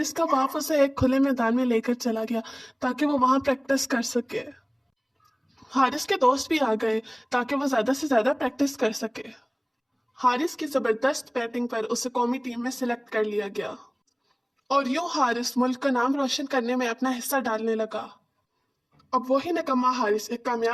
का बाप उसे एक खुले मैदान में लेकर चला गया ताकि वो वहां प्रैक्टिस कर सके। हारिस के दोस्त भी आ गए ताकि वो ज्यादा से ज्यादा प्रैक्टिस कर सके। हारिस की जबरदस्त बैटिंग पर उसे कौमी टीम में सिलेक्ट कर लिया गया और यूं हारिस मुल्क का नाम रोशन करने में अपना हिस्सा डालने लगा। अब वही निकम्मा हारिस एक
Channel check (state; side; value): identical; both; correlation 1.00